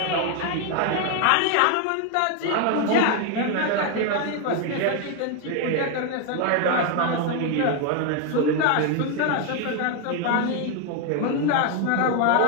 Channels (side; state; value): both; different; correlation 0.01